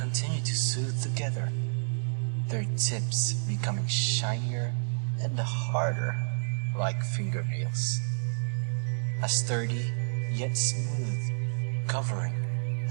to soothe together, their tips becoming shinier and harder like fingernails. A sturdy yet smooth covering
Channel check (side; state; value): left; silent; 58 dB below the other